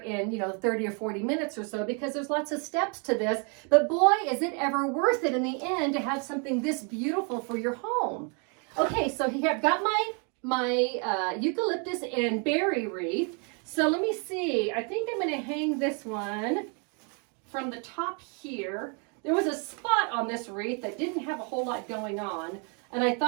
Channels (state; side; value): quieter; left; 36.9 dB